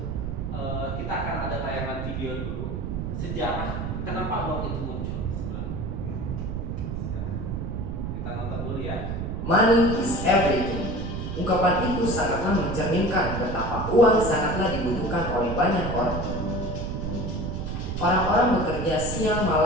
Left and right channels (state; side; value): noise; right; rumble, 4 dB below the sound